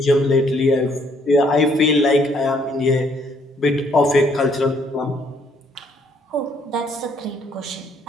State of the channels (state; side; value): normal; both; correlation 0.66